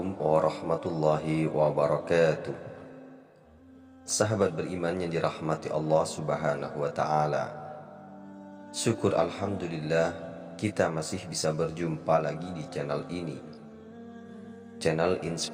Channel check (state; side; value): identical; both; correlation 1.00